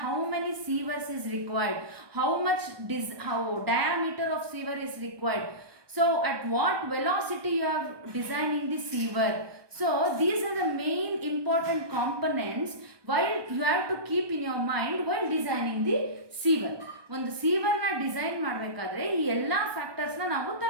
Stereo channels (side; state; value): left; late; 1.2 ms